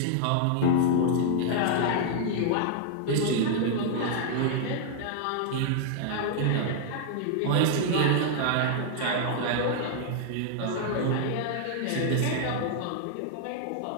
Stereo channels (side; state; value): both; different; correlation -0.01